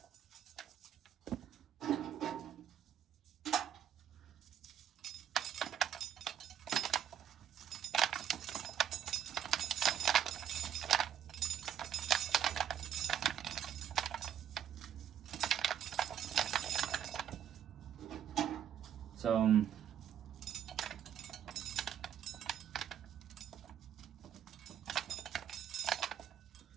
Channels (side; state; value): left; quieter; 9.5 dB